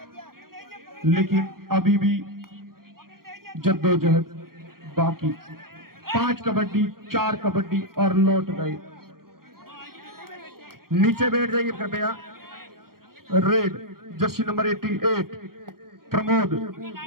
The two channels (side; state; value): left; late; 0.93 ms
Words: लेकिन अभी भी जद्दोजहद बाकी। 5 कबड्डी 4 कबड्डी और लौट गए। नीचे बैठ जाइए कृपया। Red Jersey number 88 Pramod,